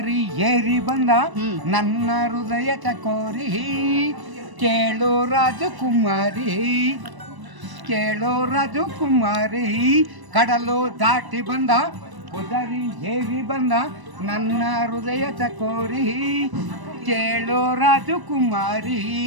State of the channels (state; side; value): late; left; 1.0 ms